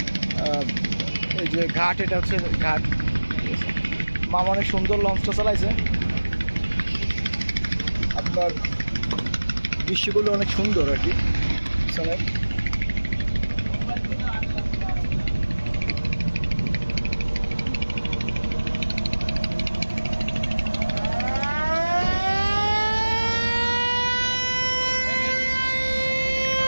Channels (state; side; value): inverted; both; correlation -1.00